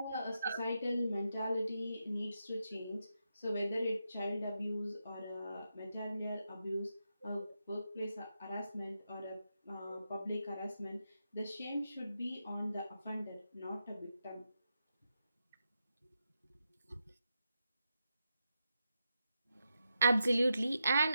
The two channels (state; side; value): inverted; both; correlation -0.86